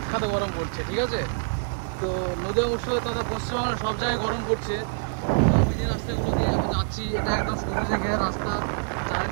গরম পড়ছে, ঠিক আছে। তো নদীয়া মুর্শিদাবাদ তথা পশ্চিমবঙ্গের সব জায়গায় গরম পড়ছে। তো আমি যে রাস্তাগুলো দিয়ে এখন যাচ্ছি এটা একদম সবুজে ঘেরা রাস্তা,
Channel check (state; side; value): silent; left; digital silence